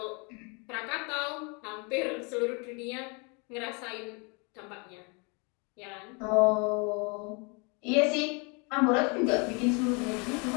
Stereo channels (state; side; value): quieter; right; 32.0 dB